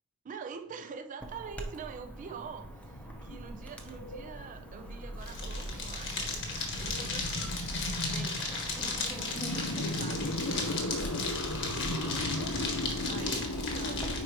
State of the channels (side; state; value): both; normal; correlation 0.25